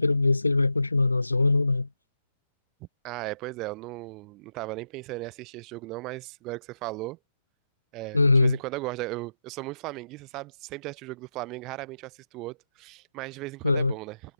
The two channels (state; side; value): inverted; both; correlation -0.83